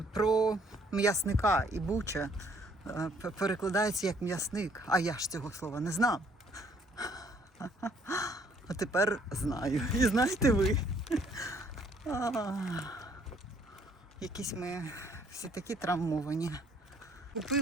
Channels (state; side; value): normal; both; correlation 0.63